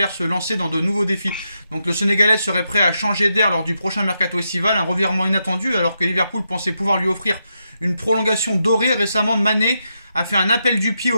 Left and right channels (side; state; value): both; inverted; correlation -0.84